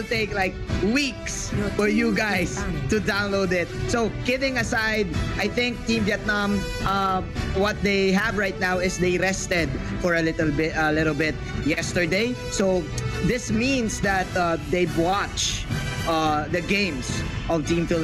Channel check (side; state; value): both; identical; correlation 1.00